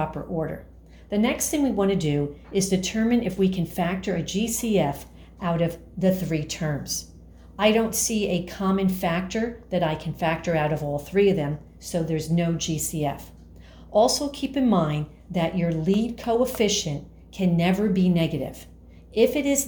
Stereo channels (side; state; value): both; identical; correlation 1.00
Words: order. The next thing we want to do is determine if we can factor a GCF out of the 3 terms. I don't see a common factor that I can factor out of all 3 of them, so there's no GCF. Also keep in mind that your lead coefficient can never be negative. If it is